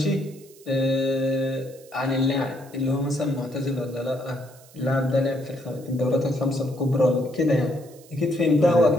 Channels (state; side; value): noise; right; hiss, 24 dB below the sound